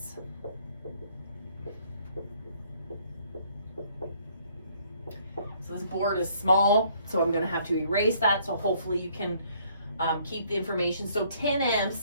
So this board is small, so I'm going to have to erase that, so hopefully you can keep the information. So 10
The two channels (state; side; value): inverted; both; correlation -0.63